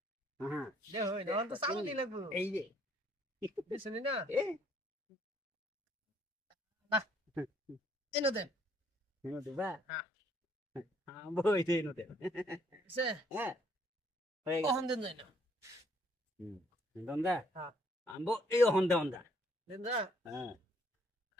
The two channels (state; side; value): normal; both; correlation 0.65